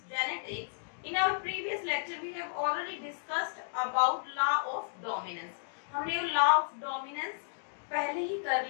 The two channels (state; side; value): silent; right; digital silence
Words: genetics. In our previous lecture, we have already discussed about law of dominance. हमने law of dominance पहले ही कर